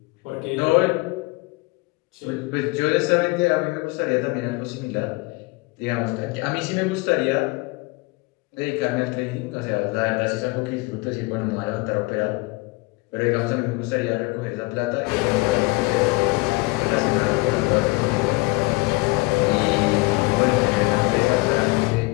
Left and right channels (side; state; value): right; quieter; 25.0 dB